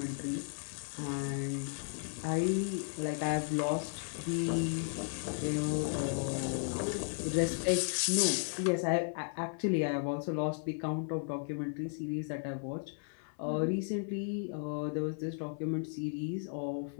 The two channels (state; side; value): silent; right; 54 dB below the other